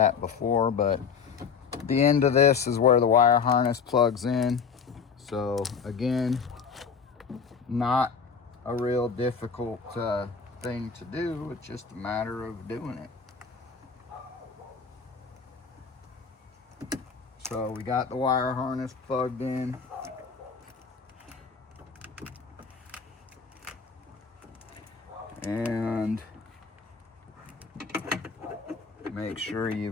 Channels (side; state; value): right; quieter; 5.9 dB